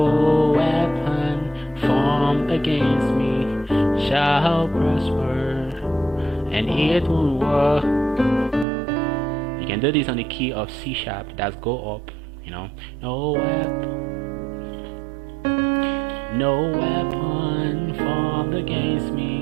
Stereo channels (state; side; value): drops out; left; at 8.7 s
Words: weapon formed against me shall prosper, and it won't work. You can do this on the key of C sharp. That's go up. You know, no weapon formed against